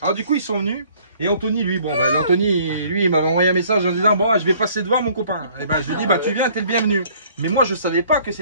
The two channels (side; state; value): both; inverted; correlation -0.58